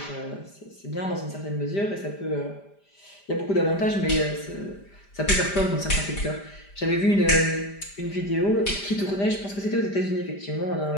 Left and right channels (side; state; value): right; late; 5.0 ms